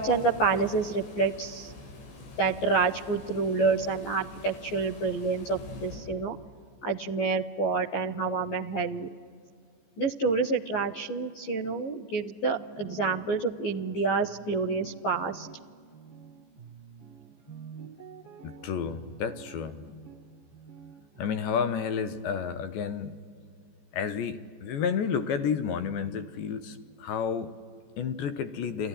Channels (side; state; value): right; late; 14 ms